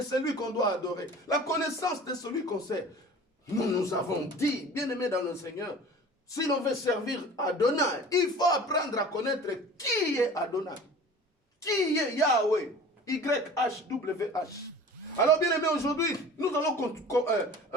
celui qu'on doit adorer. La connaissance de celui qu'on sait. Nous avons dit, bien-aimés dans le Seigneur, si l'on veut servir Adonai, il faut apprendre à connaître qui est Adonai. Qui est Yahweh? YHWH. Alors, bien-aimés, aujourd'hui, nous allons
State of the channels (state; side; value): normal; both; correlation 0.42